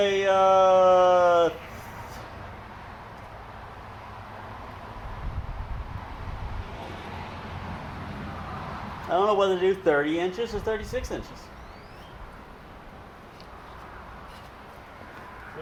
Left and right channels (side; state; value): both; identical; correlation 1.00